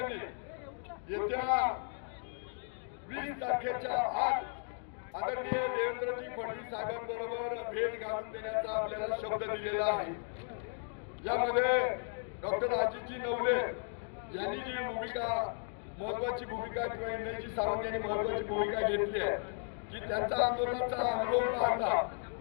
येत्या 20 तारखेच्या आत आदरणीय देवेंद्रजी फडणवीस साहेबांबरोबर भेट घालून देण्याचा आपल्याला शब्द दिलेला आहे. यामध्ये डॉक्टर अजितजी नवले यांनी जी भूमिका महत्वाची भूमिका किंवा इंद्रजी सावंत यांनी महत्वाची भूमिका घेतली आहे की त्यांचा आंदोलनाचा अनुभव पाहता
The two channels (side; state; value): right; silent; 54 dB below the other